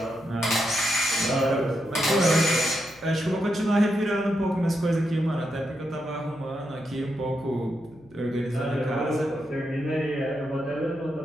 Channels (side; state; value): left; noise; hum, 26 dB below the sound